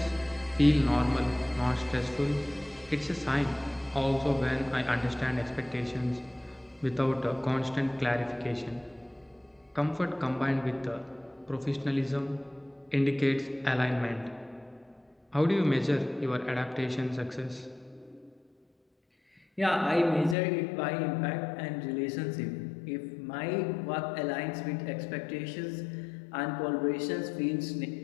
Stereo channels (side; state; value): right; drops out; at 20.4 s